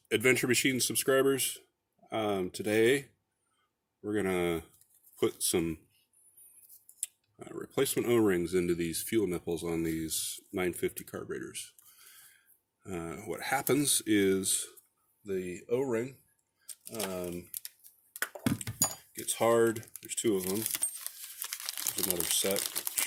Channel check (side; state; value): both; identical; correlation 1.00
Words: Adventure Machine subscribers. Today we're gonna put some replacement O-rings into these fuel nipples on these 950 carburetors. What happens is the O-ring gets hard. There's two of them. There's another set